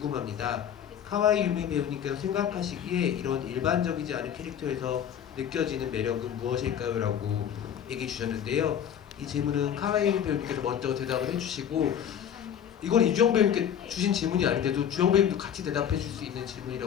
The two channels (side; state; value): right; quieter; 9.1 dB